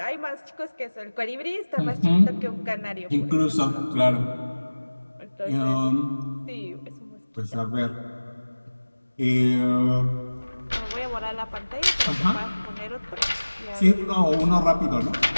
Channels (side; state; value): both; inverted; correlation -1.00